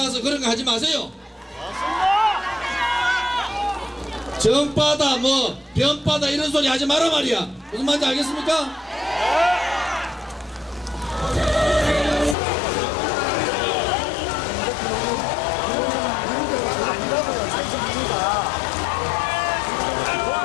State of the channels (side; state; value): right; drops out; at 12.4 s